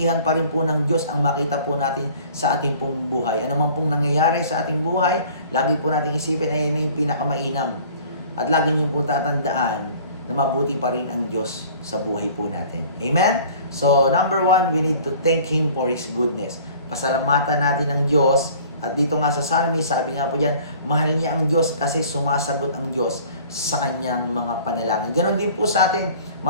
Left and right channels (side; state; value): both; inverted; correlation -0.49